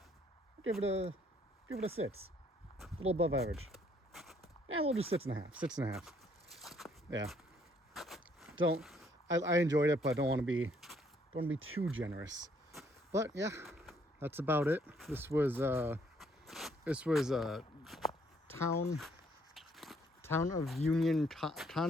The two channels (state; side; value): normal; both; correlation 0.66